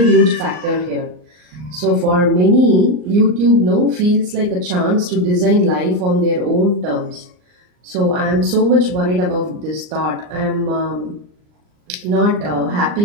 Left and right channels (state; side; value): late; left; 39 ms